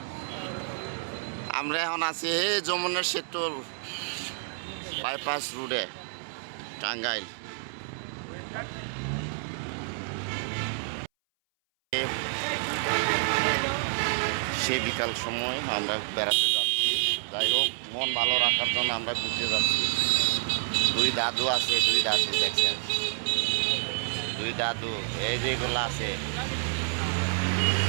আমরা এখন আছি যমুনা সেতুর বাইপাস রোডে টাঙ্গাইল সে বিকাল সময় আমরা বেড়াতে যাচ্ছি যাই হোক মন ভালো রাখার জন্য আমরা ঘুরতে যাচ্ছি দুই দাদু আছে দুই দাদু দেখছেন দুই দাদু এই যেগুলো আছে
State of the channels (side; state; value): left; silent; 59 dB below the other